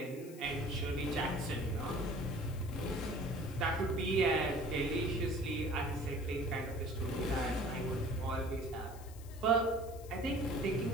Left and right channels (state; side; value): noise; left; hiss, 20 dB below the sound